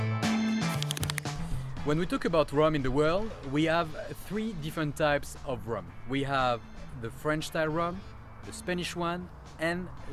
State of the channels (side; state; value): both; identical; correlation 1.00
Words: When we talk about rum in the world, we have three different types of rum. We have the French style rum, the Spanish one, and